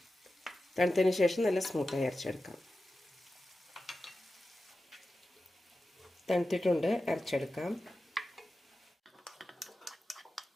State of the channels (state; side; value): normal; both; correlation 0.93